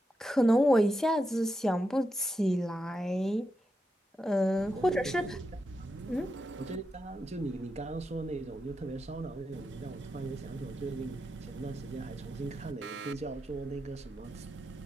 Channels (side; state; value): both; normal; correlation 0.87